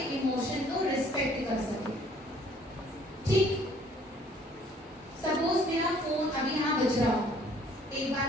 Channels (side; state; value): both; normal; correlation 0.59